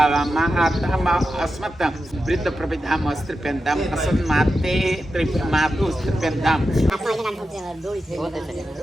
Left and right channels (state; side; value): normal; both; correlation 0.90